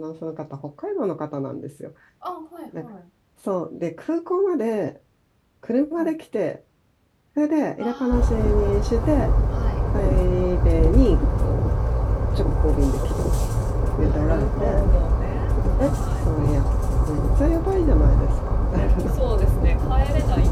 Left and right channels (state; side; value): identical; both; correlation 1.00